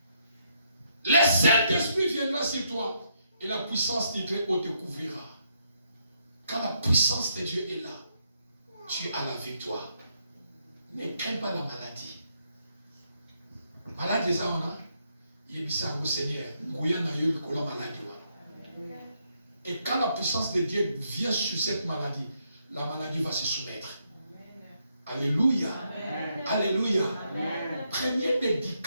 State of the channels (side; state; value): both; inverted; correlation -0.76